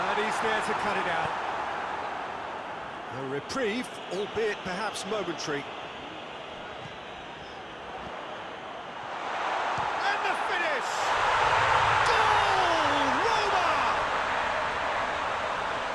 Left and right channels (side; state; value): both; identical; correlation 1.00